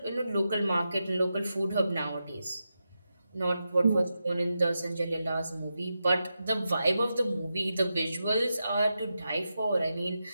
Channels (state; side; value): inverted; both; correlation -0.89